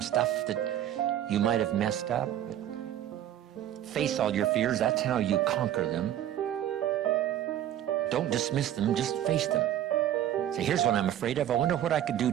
stuff that you might have messed up. But face all your fears. That's how you conquer them. Don't dismiss them, just face them. Say, here's what I'm afraid of. I wonder what I could do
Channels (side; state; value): left; quieter; 11.7 dB